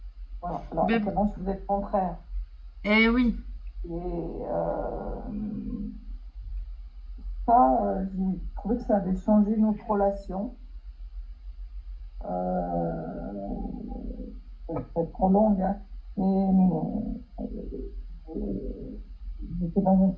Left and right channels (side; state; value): both; identical; correlation 1.00